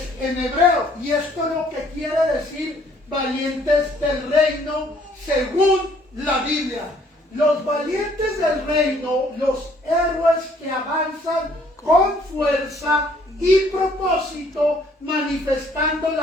en hebreo, y esto es lo que quiere decir valientes del reino según la Biblia. Los valientes del reino, los héroes que avanzan con fuerza y propósito, manifestando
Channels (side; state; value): both; normal; correlation 0.62